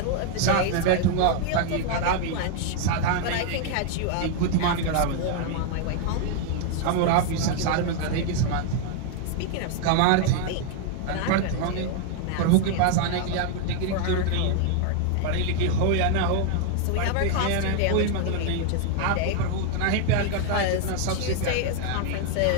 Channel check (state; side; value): different; both; correlation 0.00